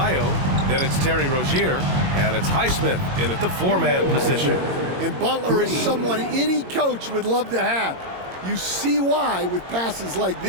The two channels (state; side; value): late; left; 22 ms